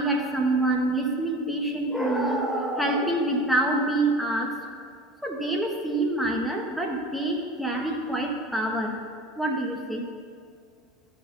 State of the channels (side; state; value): both; normal; correlation 0.39